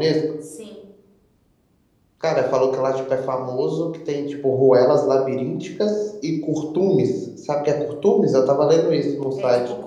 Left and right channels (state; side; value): identical; both; correlation 1.00